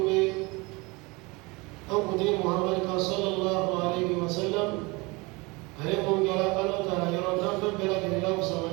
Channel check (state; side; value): quieter; left; 25.4 dB